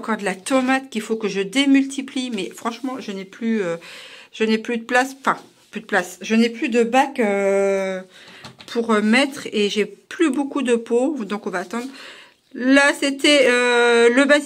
de la tomate qu'il faut que je démultiplie. Mais franchement, je n'ai plus de place. Enfin, plus de place. Je n'ai plus de bac pour mettre. Et j'ai plus beaucoup de pots. Donc, on va attendre. Là, c'était le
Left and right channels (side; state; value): both; identical; correlation 1.00